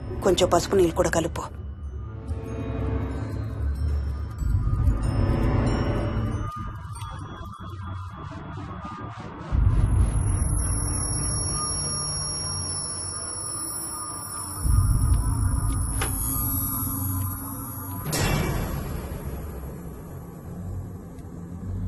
కొంచెం పసుపు నీళ్ళు కూడా కలుపు.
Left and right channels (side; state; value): both; identical; correlation 1.00